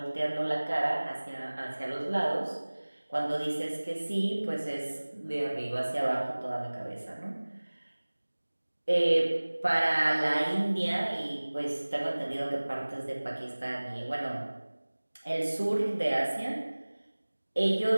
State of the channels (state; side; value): inverted; both; correlation -1.00